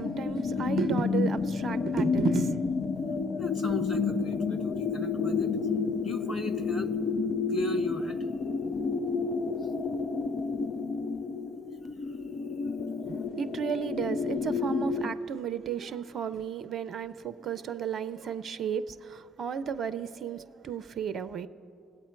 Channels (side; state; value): both; normal; correlation 0.59